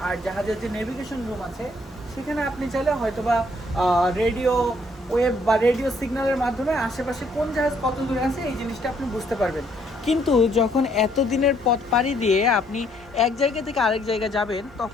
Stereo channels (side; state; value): both; normal; correlation 0.67